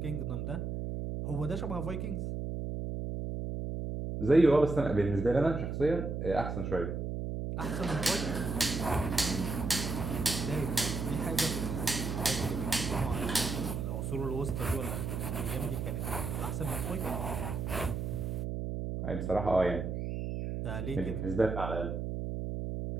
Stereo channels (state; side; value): noise; right; hum, 3 dB below the sound